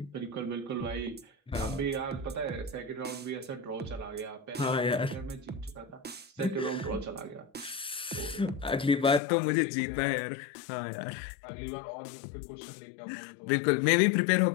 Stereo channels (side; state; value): right; drops out; at 9.2 s